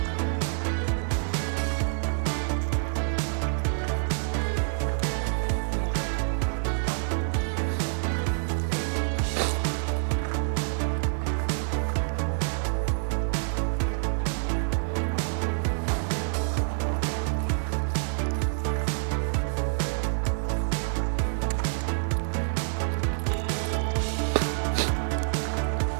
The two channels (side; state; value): left; silent; 58 dB below the other